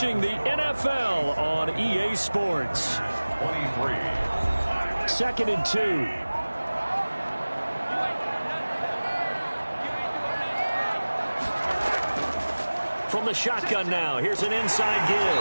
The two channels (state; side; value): inverted; both; correlation -1.00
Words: the NFL on EA Sports. 23. 2nd and 2. From the shotgun now, here's an inside give.